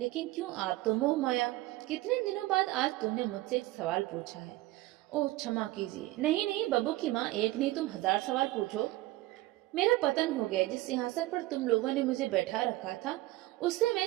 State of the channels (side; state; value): left; quieter; 18.0 dB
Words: क्यों, आप तो मोह माया। कितने दिनों बाद आज तुमने मुझसे एक सवाल पूछा है। ओह, क्षमा कीजिए। नहीं नहीं बब्बू की माँ, एक नहीं तुम 1000 सवाल पूछो। मेरा पतन हो गया। जिस सिंहासन पर तुम लोगों ने मुझे बैठा रखा था उससे मैं